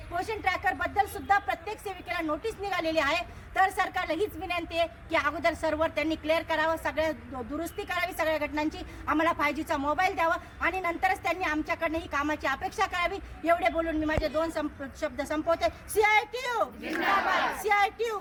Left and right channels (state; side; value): identical; both; correlation 1.00